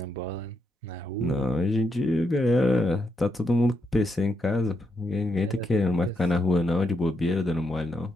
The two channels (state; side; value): normal; both; correlation 0.80